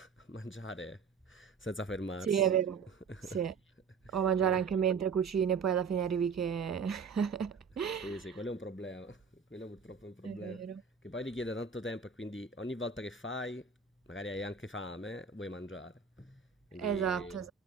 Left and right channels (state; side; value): quieter; left; 6.0 dB